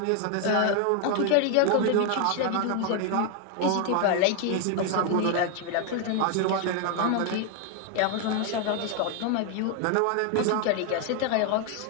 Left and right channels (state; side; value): different; both; correlation 0.01